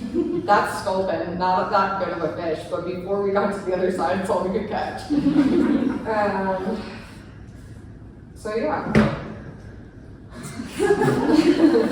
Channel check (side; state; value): both; identical; correlation 1.00